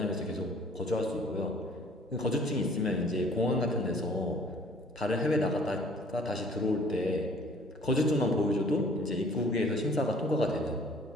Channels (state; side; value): normal; both; correlation 0.54